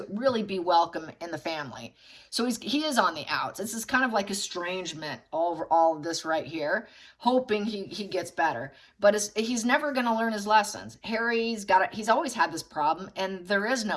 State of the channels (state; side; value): identical; both; correlation 1.00